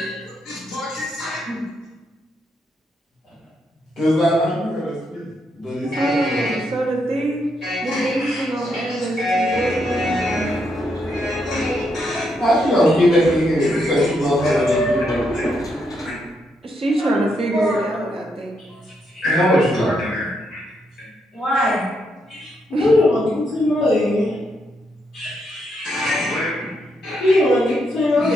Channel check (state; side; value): normal; both; correlation 0.79